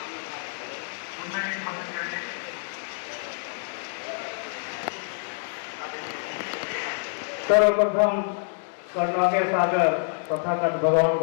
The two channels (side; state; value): right; silent; digital silence